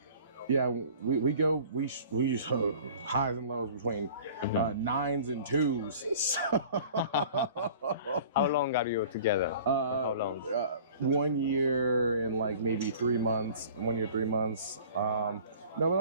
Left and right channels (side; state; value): both; inverted; correlation -0.46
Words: Yeah, we use highs and lows between 9s and 2s. So how long are you together? How long? 1 year and like maybe 3 months. 1 year, 3 months. No,